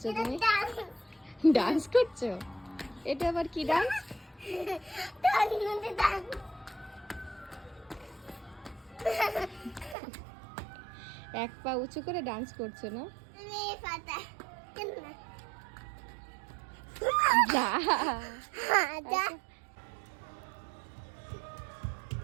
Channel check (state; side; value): drops out; left; at 10.0 s